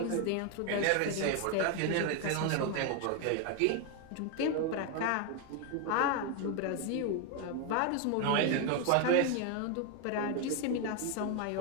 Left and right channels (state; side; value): different; both; correlation 0.01